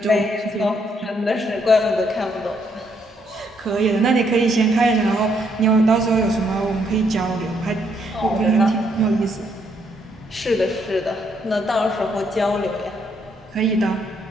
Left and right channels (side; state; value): both; normal; correlation 0.72